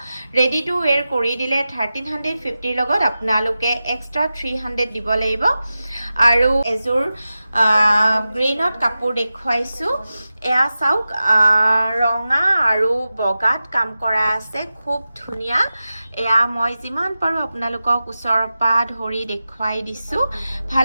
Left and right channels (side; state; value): both; inverted; correlation -0.94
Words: ৰেডি টু ওৱেৰ কৰি দিলে 1350 লগত আপোনালোকে এক্সট্ৰা 300 দিব লাগিব আৰু এজোৰ গ্ৰীণত কাপোৰ দেখুৱাইছো এয়া চাওক ৰঙা আৰু বগাত কাম কৰা আছে খুব ধুনীয়া এয়া মই যিমান পাৰো আপোনালোকক ওচৰৰ পৰা ধৰি দেখুৱাই দিছো ভাল